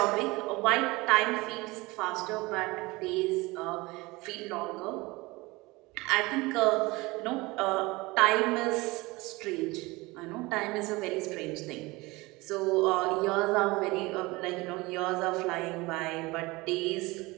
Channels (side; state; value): left; quieter; 22.5 dB